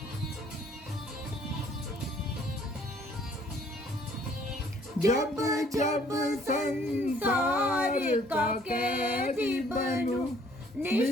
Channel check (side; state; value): both; normal; correlation 0.60